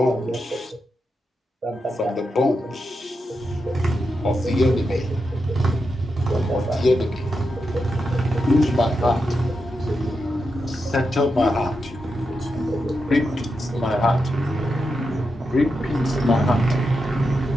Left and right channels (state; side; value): normal; both; correlation 0.87